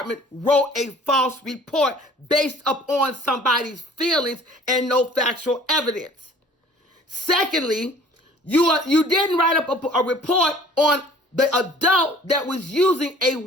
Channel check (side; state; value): both; normal; correlation 0.51